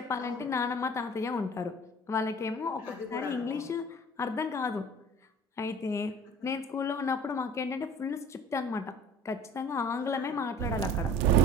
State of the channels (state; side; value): normal; both; correlation 0.45